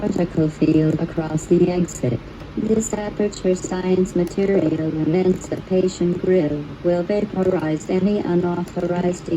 field across the exit. This aperture science material emancipation grill will vaporize any unauthorized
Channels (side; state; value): both; identical; correlation 1.00